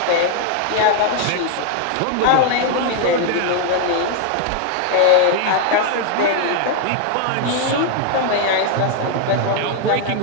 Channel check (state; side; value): different; both; correlation 0.01